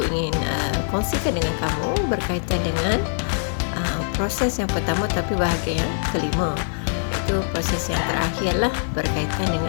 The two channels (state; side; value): silent; right; digital silence